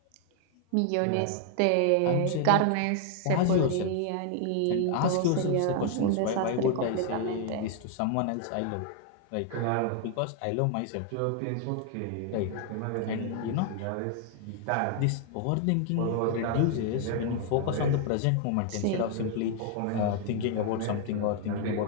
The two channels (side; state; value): both; different; correlation 0.00